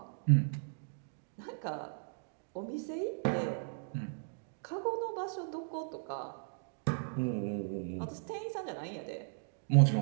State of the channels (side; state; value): left; silent; digital silence